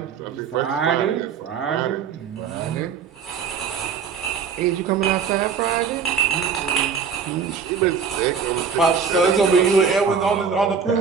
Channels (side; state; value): left; quieter; 6.4 dB